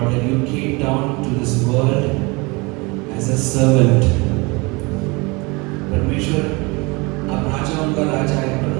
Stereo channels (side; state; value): left; quieter; 26.4 dB